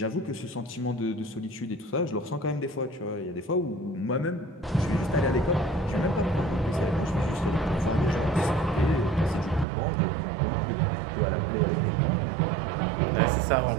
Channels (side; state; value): left; drops out; at 9.7 s